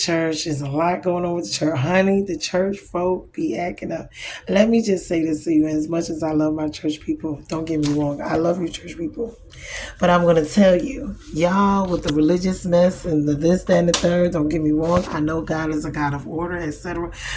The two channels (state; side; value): identical; both; correlation 1.00